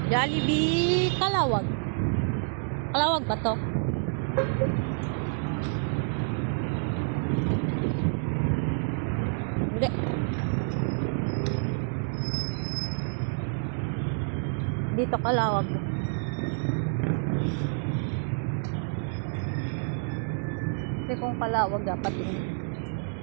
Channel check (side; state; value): left; silent; 59 dB below the other